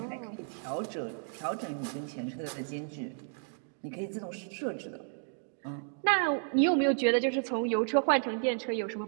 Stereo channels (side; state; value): left; silent; 55 dB below the other